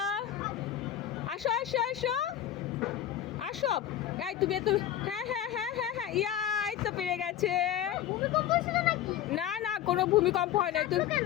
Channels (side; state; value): right; quieter; 11.3 dB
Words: আসো আসো আসো আসো। এই তুমি তুমি, হ্যাঁ হ্যাঁ হ্যাঁ হ্যাঁ হ্যাঁ, ইয়াই তো পেরে গেছে। না না, কোনো ভূমিকম্প হয় নাই। তুমি